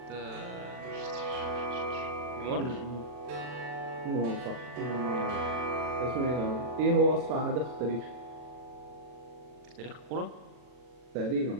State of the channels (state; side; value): late; left; 40 ms